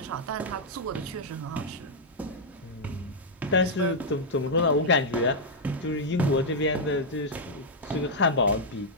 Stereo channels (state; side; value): normal; both; correlation -0.05